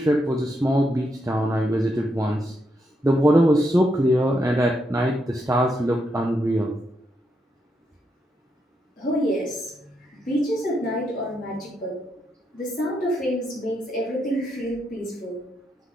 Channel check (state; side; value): normal; both; correlation 0.81